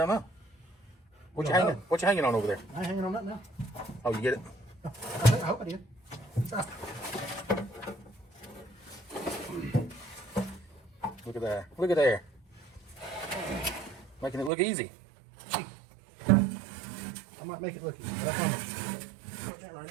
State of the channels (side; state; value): left; drops out; at 14.5 s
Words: know. What you hanging on over there? I ain't hanging on that now. Oh, you get it? I hope I did. Look at there. Look at there. Making it look easy. I might make it look easy, but I promise. Put that right